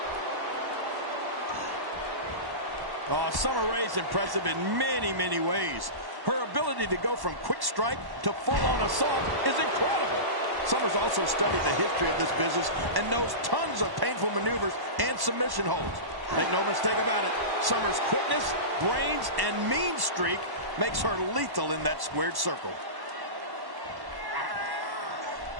Summer Rae's impressive in many, many ways. Her ability to go from quick strike to full-on assault is incredible. Summer's also studied the history of this business and knows tons of painful maneuvers and submission holds. Make no mistake about it, Summer's quickness, brains, and mean streak makes her lethal in that squared circle.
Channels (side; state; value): left; late; 1.1 ms